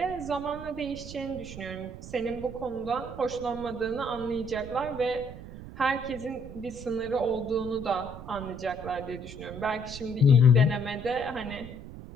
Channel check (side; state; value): right; noise; rumble, 12 dB below the sound